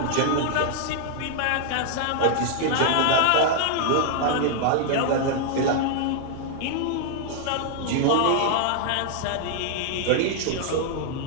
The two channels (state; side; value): different; both; correlation 0.00